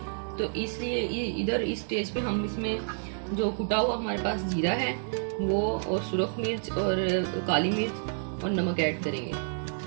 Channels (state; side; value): silent; left; 58 dB below the other